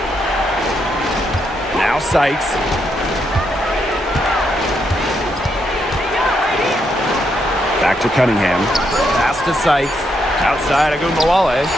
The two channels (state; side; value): normal; both; correlation 0.78